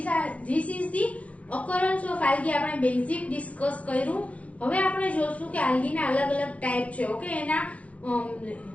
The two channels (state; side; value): late; right; 0.065 ms